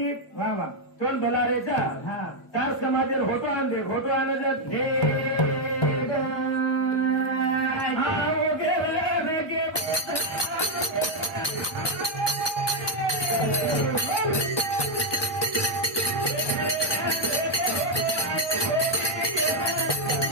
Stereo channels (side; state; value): right; late; 1.2 ms